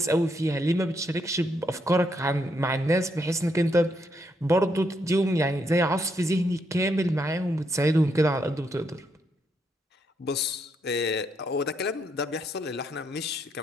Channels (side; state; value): both; normal; correlation 0.77